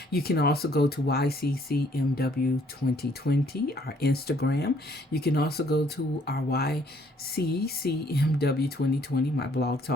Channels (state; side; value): normal; both; correlation 0.64